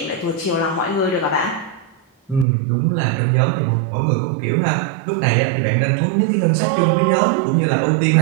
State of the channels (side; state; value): left; drops out; at 2.5 s